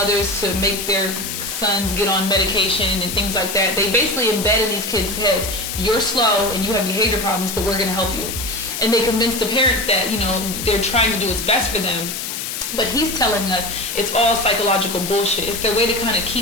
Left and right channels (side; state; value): left; noise; hiss, 5 dB below the sound